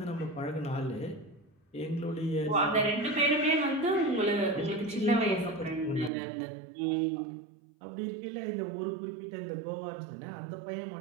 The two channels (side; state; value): left; drops out; at 6.1 s